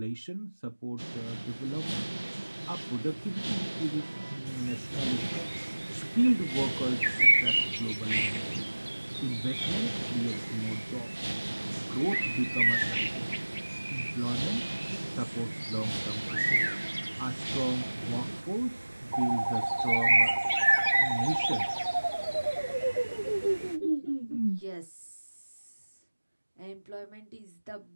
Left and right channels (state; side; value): inverted; both; correlation -1.00